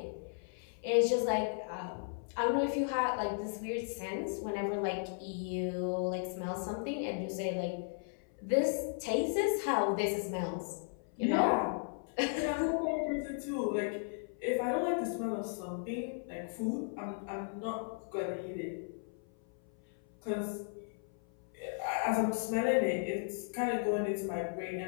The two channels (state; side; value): silent; right; 54 dB below the other